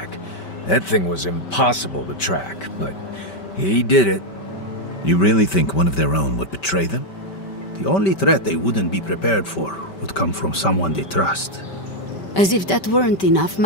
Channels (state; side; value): late; right; 5.2 ms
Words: That thing was impossible to track, but he did it. You really think one of their own would betray them? The only threat they wouldn't be prepared for would come from someone they trust. As if that weren't enough,